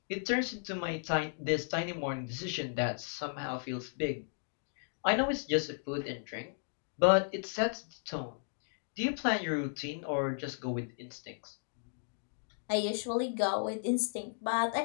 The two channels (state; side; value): silent; right; digital silence